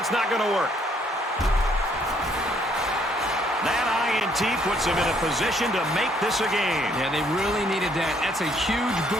not going to work. That INT puts him in a position to make this a game. Yeah, they really needed that. That's a huge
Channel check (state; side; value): normal; both; correlation 0.67